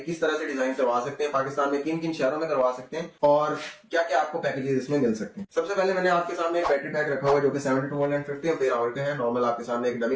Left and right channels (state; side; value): identical; both; correlation 1.00